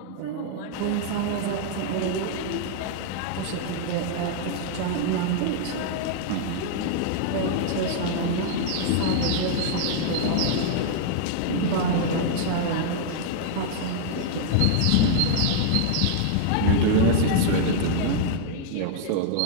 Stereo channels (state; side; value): different; both; correlation -0.01